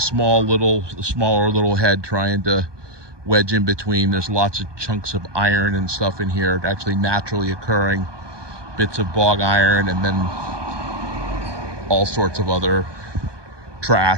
little head, trying to wedge in between. There's lots of chunks of iron and stuff in here, actually naturally occurring bits of bog iron, and then all sorts of other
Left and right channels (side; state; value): left; late; 1.2 ms